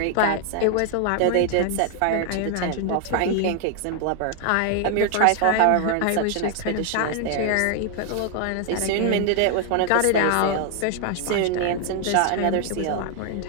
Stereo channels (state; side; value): different; both; correlation 0.00